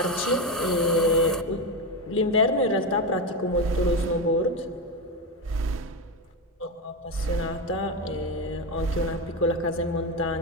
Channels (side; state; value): both; normal; correlation 0.14